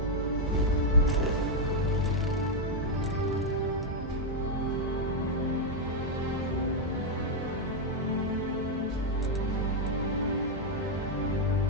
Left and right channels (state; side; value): normal; both; correlation 0.00